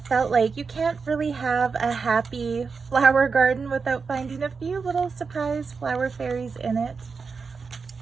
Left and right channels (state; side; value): quieter; left; 5.1 dB